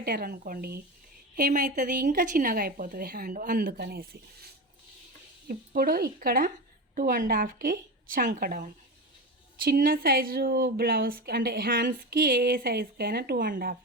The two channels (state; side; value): normal; both; correlation 0.23